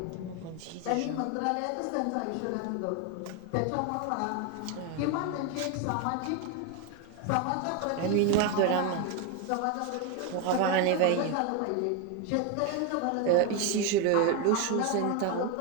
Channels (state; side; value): different; both; correlation 0.02